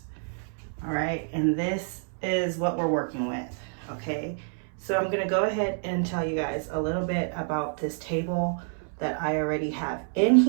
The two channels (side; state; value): left; silent; 59 dB below the other